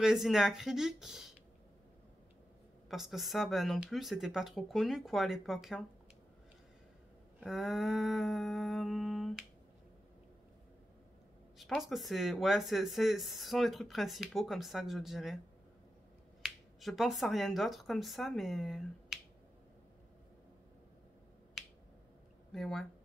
et acrylique. Parce que ça, ben non plus, c'était pas trop connu, quoi, à l'époque. Hein. Je pense que c'est... Ouais, ce sont les trucs principaux, comme ça, que je dirais. Je pense à rien d'autre comme ça, mais... Mais ouais.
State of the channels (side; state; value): both; normal; correlation 0.90